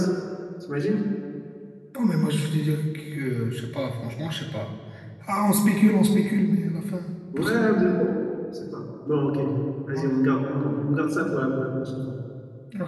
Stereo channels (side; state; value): both; identical; correlation 1.00